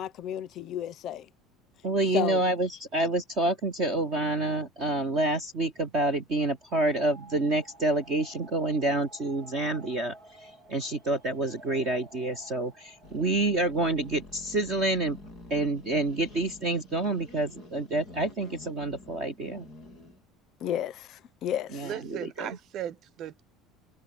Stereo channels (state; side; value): normal; both; correlation 0.32